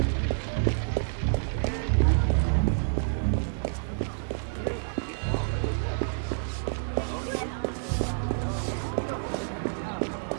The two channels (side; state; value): left; silent; digital silence